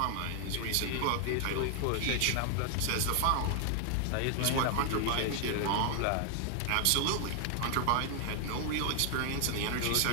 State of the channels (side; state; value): both; different; correlation 0.00